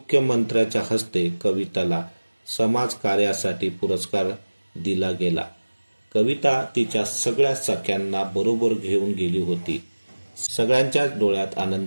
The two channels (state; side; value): inverted; both; correlation -1.00